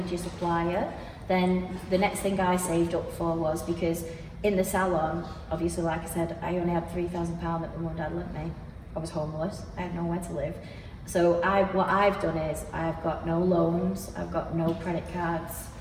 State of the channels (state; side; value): identical; both; correlation 1.00